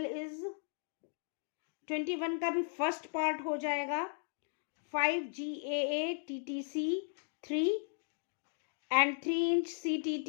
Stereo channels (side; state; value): right; silent; digital silence